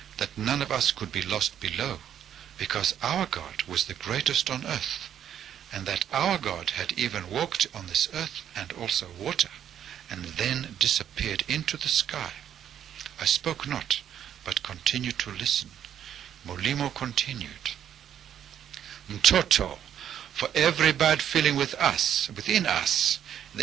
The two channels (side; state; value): left; quieter; 9.8 dB